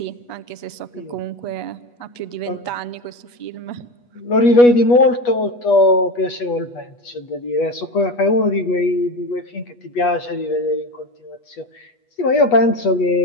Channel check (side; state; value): right; late; 8.3 ms